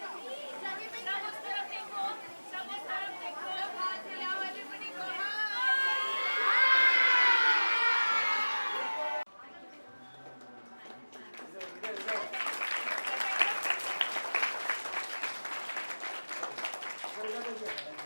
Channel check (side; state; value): both; inverted; correlation -1.00